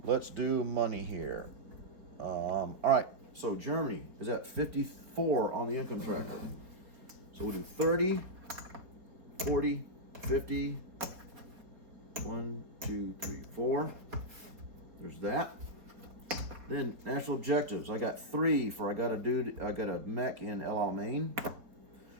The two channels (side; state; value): left; late; 4.3 ms